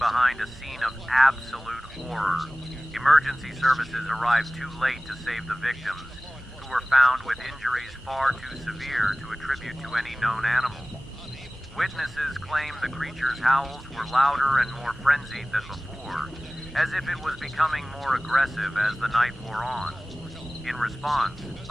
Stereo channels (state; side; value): normal; both; correlation 0.98